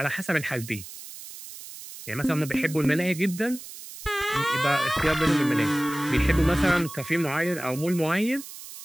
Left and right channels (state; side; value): noise; right; hiss, 14 dB below the sound